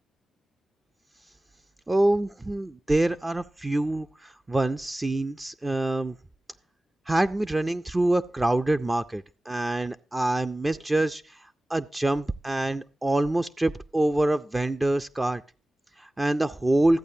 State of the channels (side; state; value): both; normal; correlation 0.98